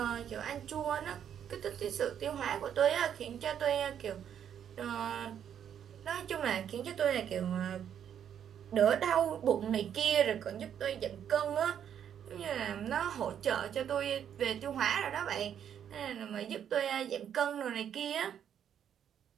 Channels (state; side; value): quieter; left; 9.1 dB